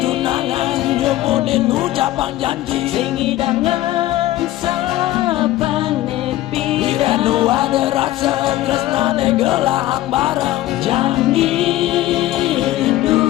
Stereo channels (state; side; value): quieter; right; 15.3 dB